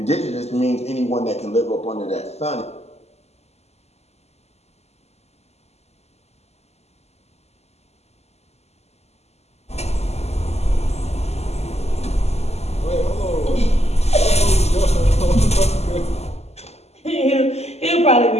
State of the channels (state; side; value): late; right; 0.31 ms